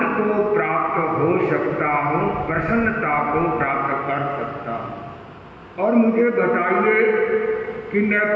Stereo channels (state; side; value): identical; both; correlation 1.00